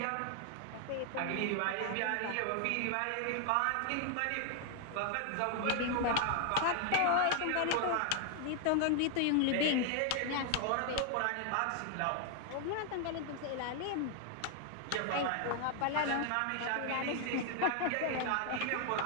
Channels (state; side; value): different; both; correlation 0.00